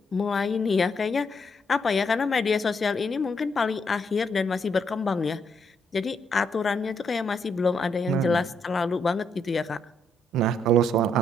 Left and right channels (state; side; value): normal; both; correlation 0.75